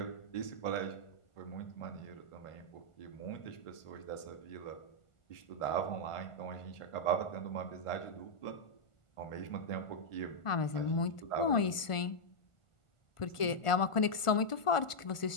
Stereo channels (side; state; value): right; late; 1.5 ms